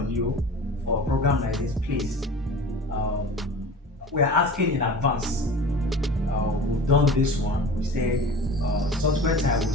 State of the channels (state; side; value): normal; both; correlation 0.38